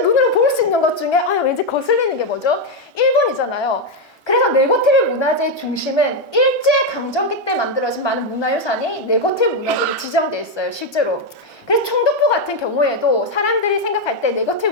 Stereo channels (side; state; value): both; normal; correlation 0.04